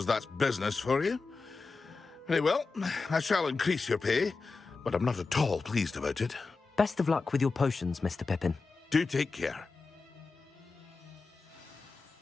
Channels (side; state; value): right; quieter; 4.2 dB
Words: that's business for you. Very well, I shall increase your pay, but I'm not at all pleased about it. Best of luck with your potions, Mr. Pippin. Do take care.